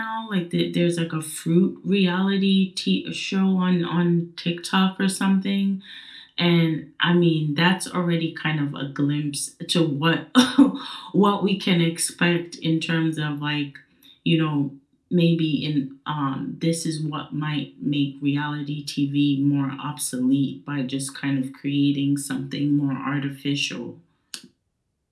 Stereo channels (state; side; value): identical; both; correlation 1.00